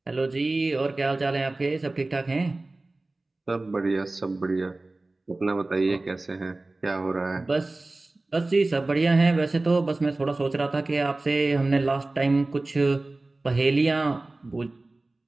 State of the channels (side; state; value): left; quieter; 3.0 dB